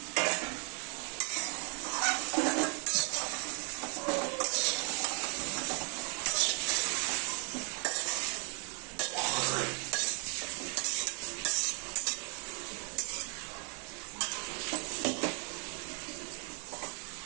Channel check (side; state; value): left; quieter; 36.2 dB